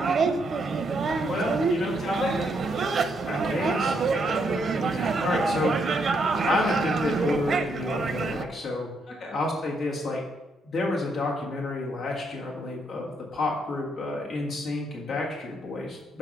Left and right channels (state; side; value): normal; both; correlation 0.75